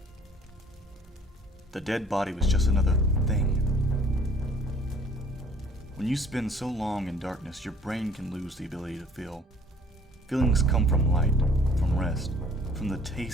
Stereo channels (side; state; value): both; normal; correlation 0.56